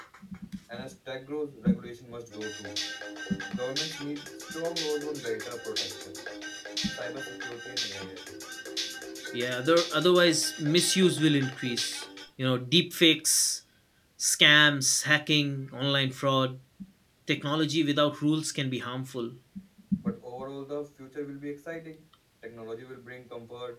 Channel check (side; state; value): both; identical; correlation 1.00